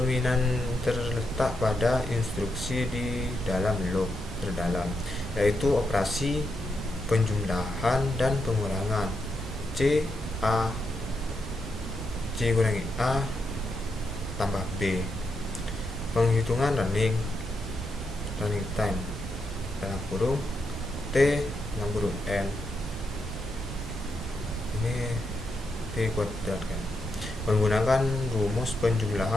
terletak pada instruksi di dalam loop terdalam, yaitu operasi penjumlahan dan pengurangan. C kurangi A tambah B. Penghitungan running time dalam kurung T dalam kurung N. Ini T kuadrat kan. Menggunakan rumus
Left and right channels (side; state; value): both; normal; correlation 0.83